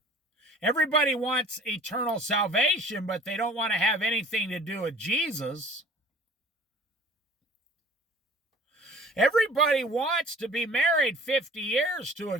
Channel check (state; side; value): normal; both; correlation 0.48